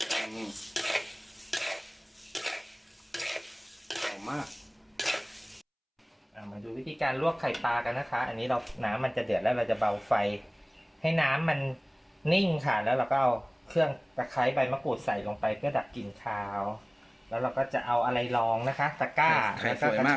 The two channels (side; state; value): both; identical; correlation 1.00